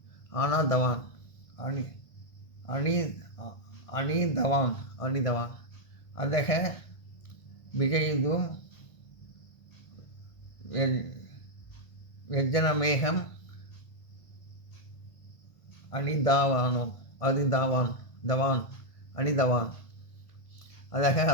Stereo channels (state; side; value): late; right; 1.6 ms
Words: அணிதவான் அதக விஜயிதும் வெஜ்ஜனமேகம் அணிதவான் அதக